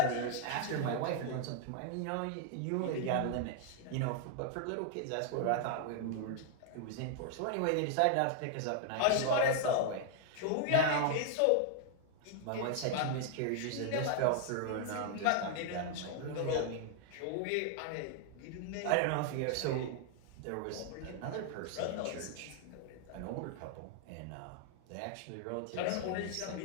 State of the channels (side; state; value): both; different; correlation 0.00